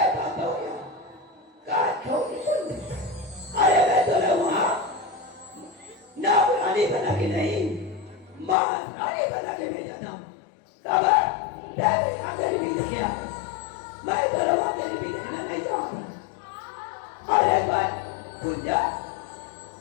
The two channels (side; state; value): right; drops out; at 8.6 s